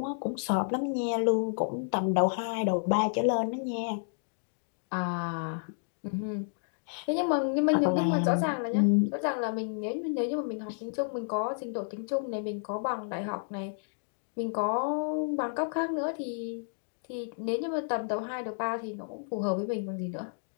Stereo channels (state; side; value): silent; right; digital silence